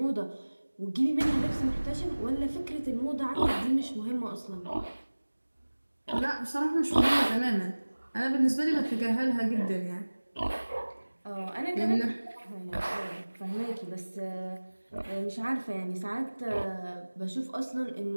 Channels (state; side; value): inverted; both; correlation -1.00